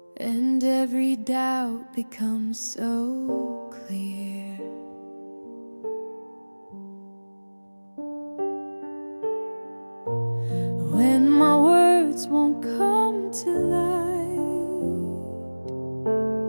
and every doubt becomes so clear. When my words won't come to light,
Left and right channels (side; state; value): both; inverted; correlation -1.00